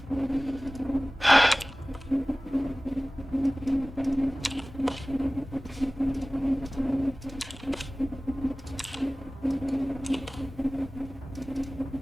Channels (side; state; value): both; normal; correlation 0.98